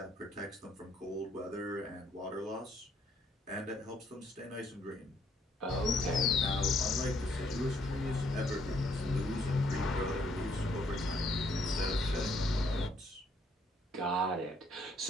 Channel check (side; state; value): both; normal; correlation 0.66